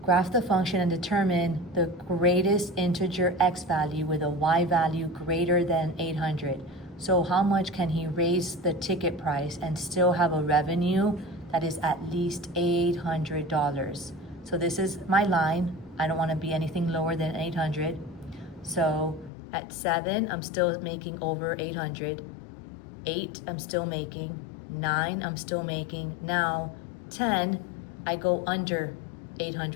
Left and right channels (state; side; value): drops out; right; at 19.3 s